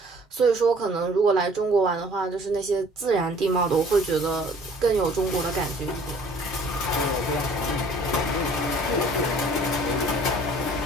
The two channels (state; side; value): normal; both; correlation 0.54